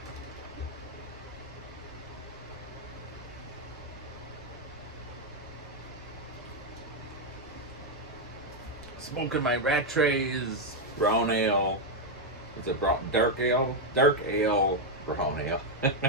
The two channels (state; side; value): normal; both; correlation 0.02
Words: Smoking my Rattray's brown ale. Is it brown, dark ale? Dark ale, brown ale.